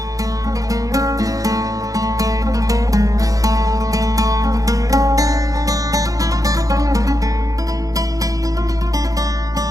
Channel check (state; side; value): late; left; 0.17 ms